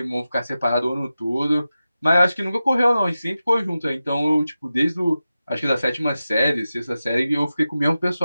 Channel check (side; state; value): both; inverted; correlation -0.93